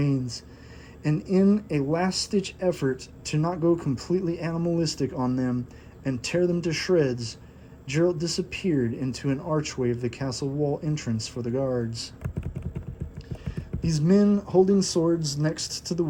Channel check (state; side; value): identical; both; correlation 1.00